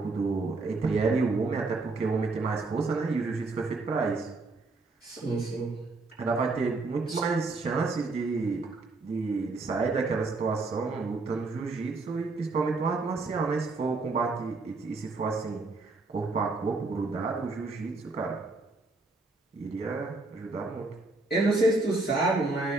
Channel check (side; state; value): left; quieter; 3.4 dB